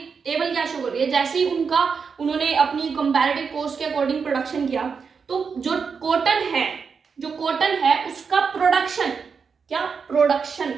टेबल क्या शो कर रही है। जैसे ही उन्होंने अपनी कंपैरेटिव कॉस्ट के अकॉर्डिंग प्रोडक्शन किया, तो जो कॉटन है जो कॉटन है उसका प्रोडक्शन, क्या प्रोडक्शन,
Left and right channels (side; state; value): left; quieter; 5.7 dB